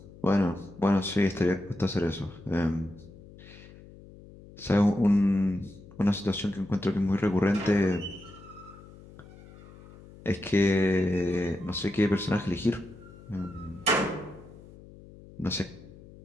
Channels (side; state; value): left; noise; hum, 20 dB below the sound